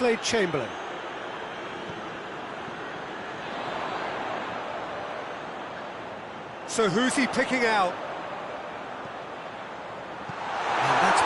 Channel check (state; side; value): identical; both; correlation 1.00